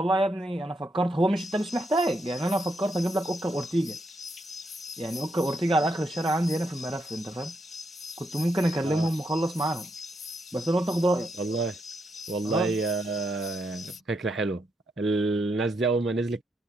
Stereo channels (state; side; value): normal; both; correlation 0.80